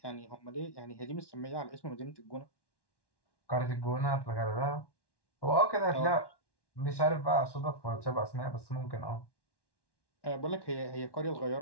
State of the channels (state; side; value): late; right; 1.1 ms